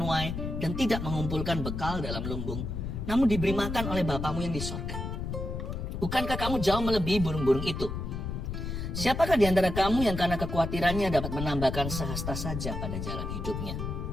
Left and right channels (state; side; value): noise; left; rumble, 4 dB below the sound